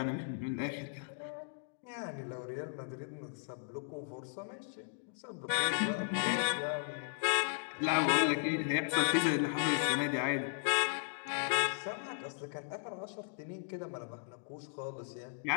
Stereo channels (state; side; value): silent; right; digital silence